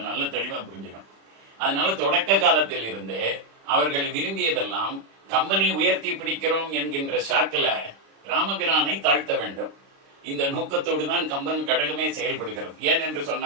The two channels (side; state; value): left; late; 36 ms